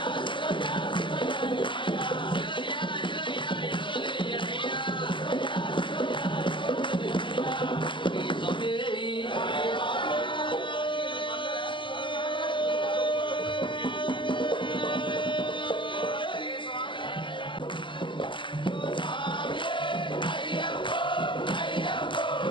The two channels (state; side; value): late; right; 0.24 ms